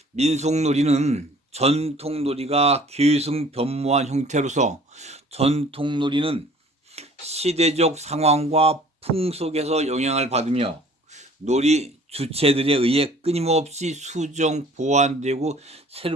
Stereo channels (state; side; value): normal; both; correlation 0.52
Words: 민속놀이는 전통놀이가 계승변모한 형태로서, 전통놀이는 시대적 상황과 풍속에서 영향을 받으며 놀이 주체들에 의해 끊임없이 수정, 보완되고